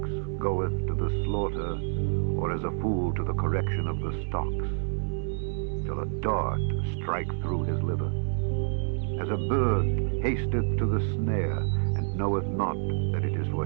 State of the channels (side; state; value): left; silent; digital silence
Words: goeth to the slaughter, or as a fool to the correction of the stocks, till a dart strike through his liver. As a bird hasteth to the snare, and knoweth not that it is for